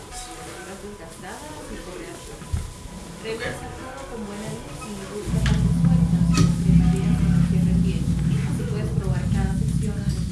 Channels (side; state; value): both; identical; correlation 1.00